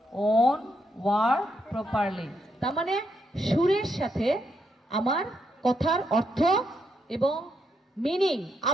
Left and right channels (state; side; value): normal; both; correlation 0.79